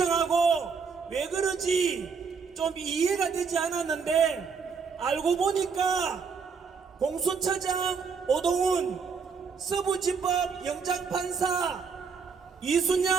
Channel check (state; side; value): quieter; left; 5.6 dB